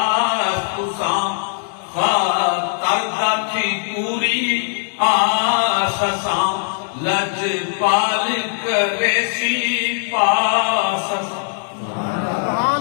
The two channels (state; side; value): silent; right; 65 dB below the other